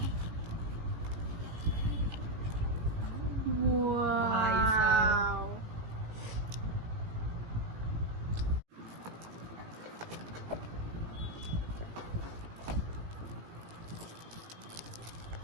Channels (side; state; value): left; late; 18 ms